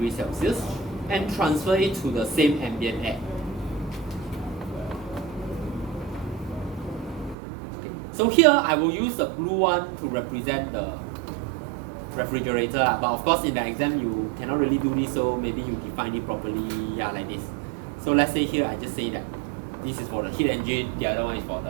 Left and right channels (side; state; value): left; drops out; at 7.4 s